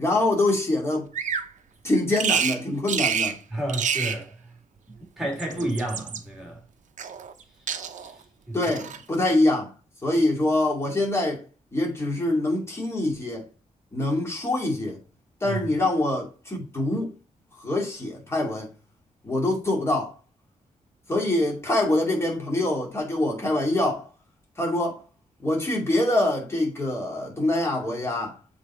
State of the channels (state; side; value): normal; both; correlation 0.72